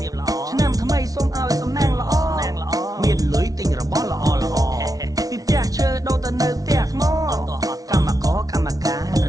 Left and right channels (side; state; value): left; late; 0.18 ms